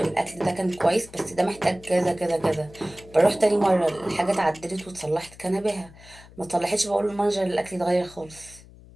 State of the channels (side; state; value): left; noise; hum, 22 dB below the sound